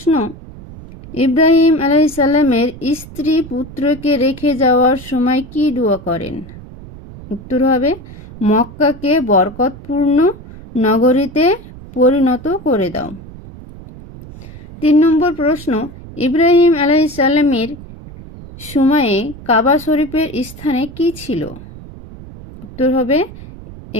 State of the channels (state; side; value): noise; right; rumble, 16 dB below the sound